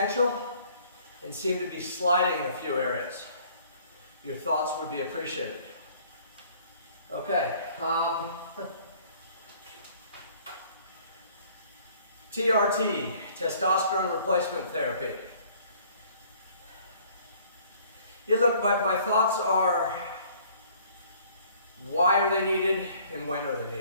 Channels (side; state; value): both; inverted; correlation -0.56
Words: and seem to be sliding in a few areas. Your thoughts would be appreciated. Okay. TRT, testosterone replacement therapy. Yeah, look, my thoughts are, why are they needed and when are